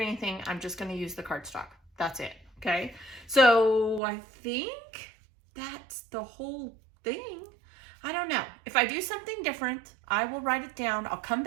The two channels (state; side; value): drops out; left; at 4.0 s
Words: anything. I'm just going to use the cardstock. That's it. Okay. So I think that's the whole thing. I don't know. If I do something different, I will write it down. I'll come